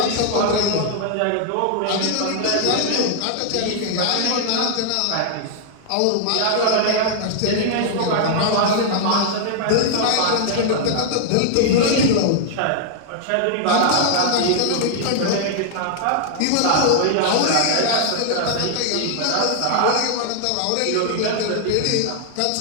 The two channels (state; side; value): different; both; correlation 0.00